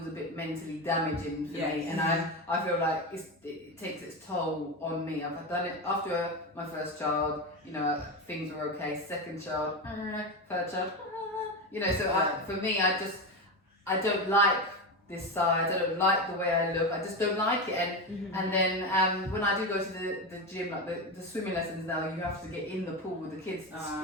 a bit mentally damaging for me, and I feel like it takes its toll on me. I've done it after my first child, things were okay. Second child, third child. So for me, I don't like this size, I don't like the way I look, I just don't like it. And then when I do go to the gym, like the swimming lessons now, you have to get in the pool with the kids,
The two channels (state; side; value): normal; both; correlation 0.17